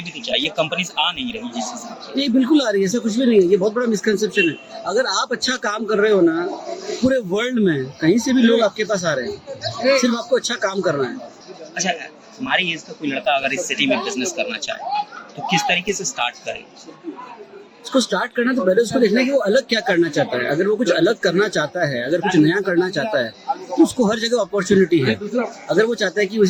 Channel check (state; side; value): identical; both; correlation 1.00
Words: भी तो चाहिए, कंपनीज आ नहीं रही जिससे। ये बिल्कुल आ रही है, ऐसा कुछ भी नहीं है। ये बहुत बड़ा मिसकंसेप्शन है। अगर आप अच्छा काम कर रहे हो ना, पूरे वर्ल्ड में कहीं से भी लोग आपके पास आ रहे हैं, सिर्फ आपको अच्छा काम करना है। अच्छा, हमारी एज का कोई लड़का अगर इस सिटी में बिजनेस करना चाहे तो किस तरीके से स्टार्ट करे? उसको स्टार्ट करना तो पहले उसको देखना है कि वो अलग क्या करना चाहता है। अगर वो कुछ अलग करना चाहता है, अगर कुछ नया करना चाहता है, तो उसको हर जगह अपॉर्चुनिटी है। अगर वो चाहता है कि